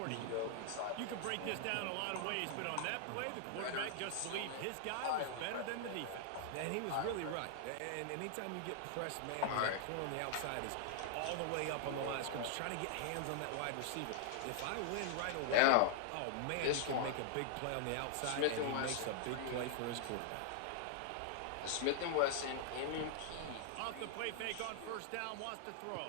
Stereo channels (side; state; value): both; different; correlation 0.00